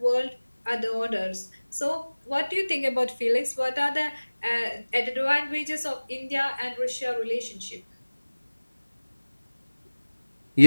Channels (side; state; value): both; inverted; correlation -1.00